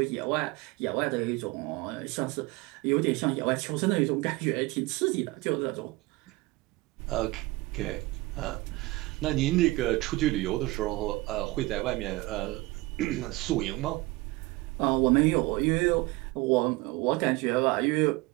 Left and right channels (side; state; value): left; quieter; 21.3 dB